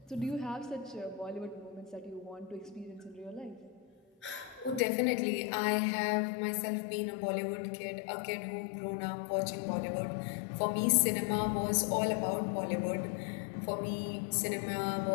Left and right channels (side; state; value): right; drops out; at 4.9 s